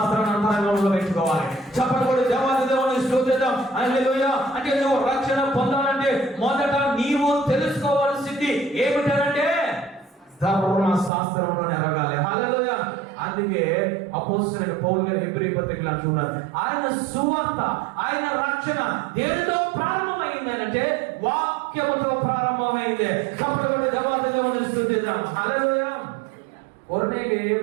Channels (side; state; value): left; drops out; at 11.1 s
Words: అంతరంగంలో పెట్టుకోవాలి. చెప్పకూడదు దేవాది దేవుని స్తుతిద్దాం. హల్లెలూయా. అంటే నువ్వు రక్షణ పొందాలంటే మొదట నీవు తెలుసుకోవాల్సింది ఏమిటంటే ధర్మశాస్త్రంలో ఎరగాలి. హల్లెలూయా. అందుకే అపోస్తలుడైన పౌలు గారు హెబ్రీ పత్రికలో అంటున్నారు, ఆయన సువార్త, ఆయన రక్షణ దేనితో ప్రారంభమైంది అంటే వాక్యముతో ప్రారంభమైంది. కాబట్టి దేవాది దేవుని స్తుతిద్దాం. హల్లెలూయా. కొర్నేలి